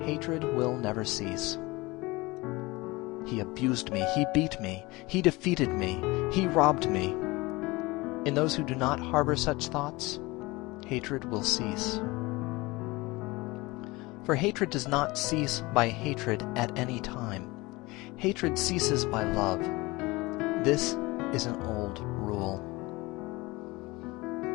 hatred will never cease. He abused me, he beat me, he defeated me, he robbed me. In those who do not harbor such thoughts, hatred will cease. For hatred does not cease by hatred at any time. Hatred ceases by love. This is an old rule.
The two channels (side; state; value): right; quieter; 22.5 dB